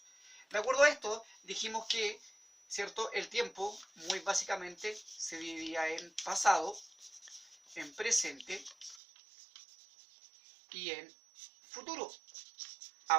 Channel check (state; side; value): drops out; left; at 9.0 s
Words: De acuerdo a esto, dijimos que, ¿cierto?, el tiempo muy básicamente se dividía en pasado, en presente y en futuro.